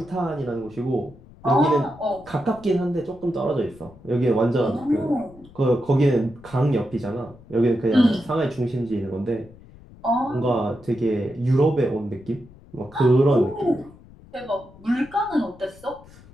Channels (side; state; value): left; noise; rumble, 22 dB below the sound